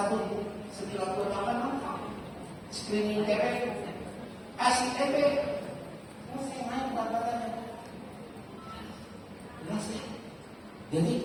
1928 screening TB, kasih TB, saya naik berat badannya. Jadi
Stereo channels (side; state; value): both; identical; correlation 1.00